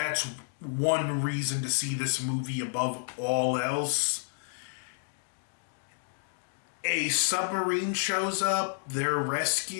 one reason to see this movie above all else. A submarine shows up, they're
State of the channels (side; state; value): right; silent; digital silence